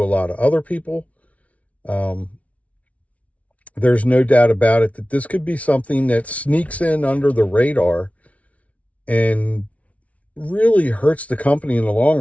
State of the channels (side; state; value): right; late; 0.066 ms